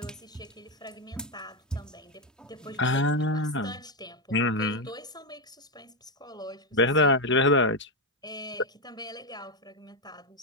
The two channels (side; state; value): both; normal; correlation 0.05